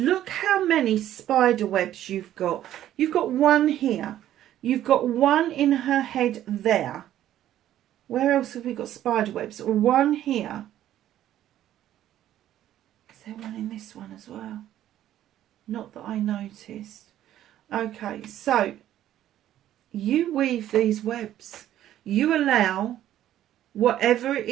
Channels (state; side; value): quieter; left; 12.3 dB